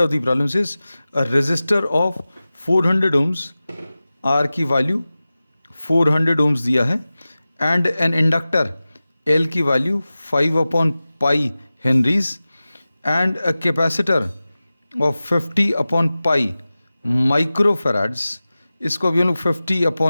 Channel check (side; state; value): both; inverted; correlation -0.96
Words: the problem is a resistor of 400 ohms, R की value 400 ohms दिया है, and an inductor L की value 5/pi henries and a capacitor of 50/pi microfarads. इसको अभी हम लोग